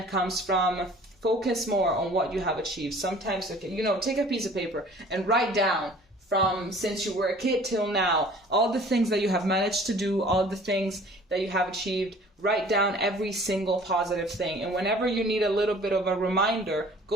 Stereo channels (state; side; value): normal; both; correlation 0.50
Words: comes from. Focus more on what you have achieved. Sometimes, you know, take a piece of paper and write down from since you were a kid till now, all the things that you have managed to do, all the things that you have achieved. Write down every single positive thing. And whenever you need a little bit of a reminder,